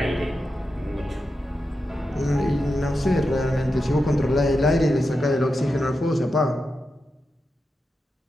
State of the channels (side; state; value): both; normal; correlation 0.89